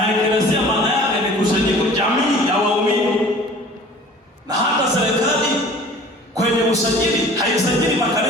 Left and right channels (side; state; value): both; normal; correlation 0.46